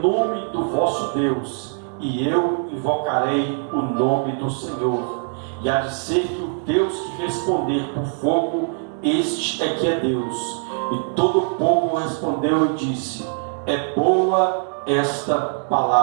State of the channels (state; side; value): silent; left; 64 dB below the other